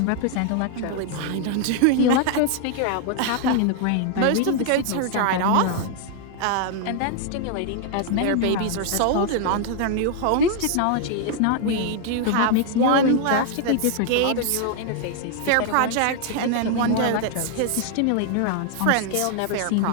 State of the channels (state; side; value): different; both; correlation 0.00